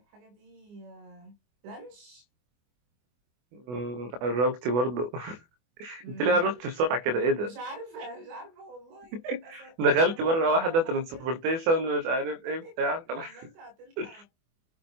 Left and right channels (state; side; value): late; left; 24 ms